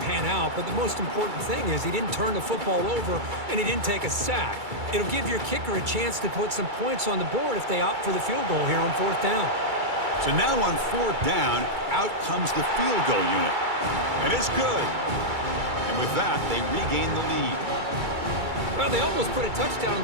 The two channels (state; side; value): late; left; 2.3 ms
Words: out, but the most important thing is he didn't turn the football over and he didn't take a sack. It'll give your kicker a chance to put some points on the board if they opt for the field goal here on fourth down. So now on fourth down, out comes the field goal unit. And it's good. And with that, they regain the lead. Well, they almost put a touchdown on